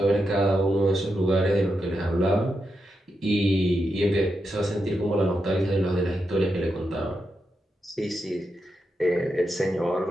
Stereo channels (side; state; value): both; normal; correlation 0.86